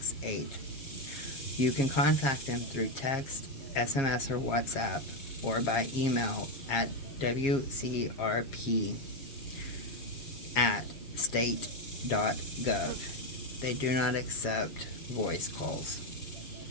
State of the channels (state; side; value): late; right; 7.4 ms